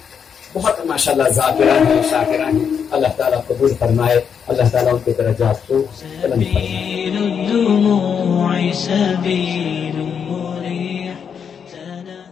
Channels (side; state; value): right; quieter; 7.1 dB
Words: بہت ماشاءاللہ ذاکرہ ہیں، شاکرہ ہیں۔ اللہ تعالیٰ قبول فرمائے، اللہ تعالیٰ ان کے درجات کو بلند فرمائے۔